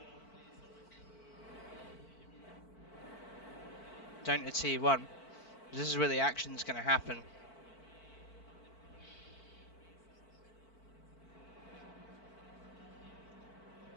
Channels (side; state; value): right; late; 4.5 ms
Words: down to T1. This is where the action's going to happen.